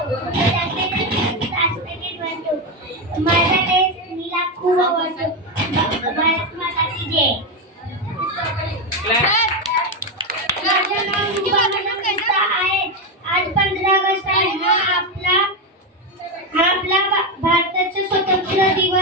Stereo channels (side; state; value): both; normal; correlation 0.10